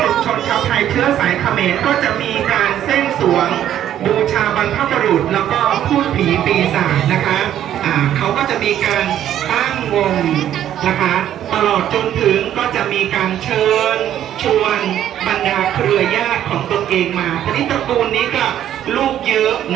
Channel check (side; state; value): left; quieter; 11.1 dB